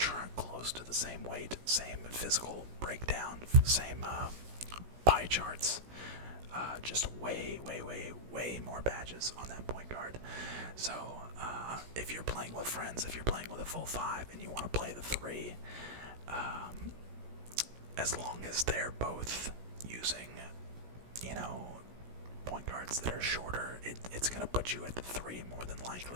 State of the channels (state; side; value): late; left; 16 ms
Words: close to the same weight, same physical breakdown, same pie charts. Just way more badges on that point guard. So if you're playing with friends, if you're playing with a full 5 and you want to play the 3, as long as they're both using, point guards that are shorter, it's going to put you at the 3 more than